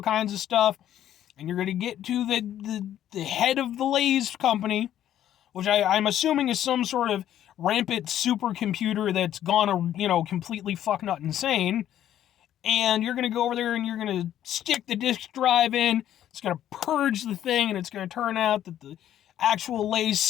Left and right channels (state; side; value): quieter; right; 11.4 dB